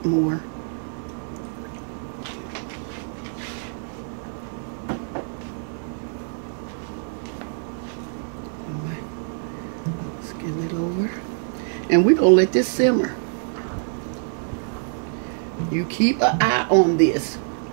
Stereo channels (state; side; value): silent; left; 62 dB below the other